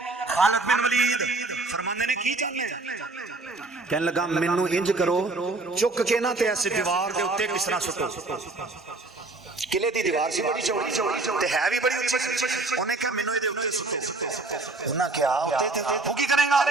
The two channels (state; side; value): quieter; left; 3.3 dB